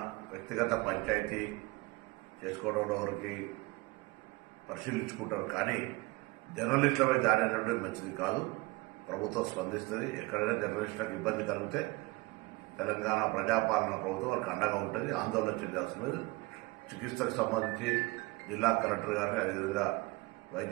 వ్యక్తిగత పంచాయతీ చేసుకోవడంలో వారికి పరిశీలించుకుంటారు. కానీ జర్నలిస్టులపై దాడి అనేటువంటి మంచిది కాదు. ప్రభుత్వం స్పందిస్తుంది. ఎక్కడైనా జర్నలిస్టులకు ఇబ్బంది కలిగితే తెలంగాణ ప్రజాపాలన ప్రభుత్వం వారికి అండగా ఉంటుంది. ఆందోళన చెందాల్సిన లేదు. చికిత్సకు సంబంధించి జిల్లా కలెక్టర్ గారిని అదేవిధంగా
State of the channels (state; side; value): quieter; left; 23.6 dB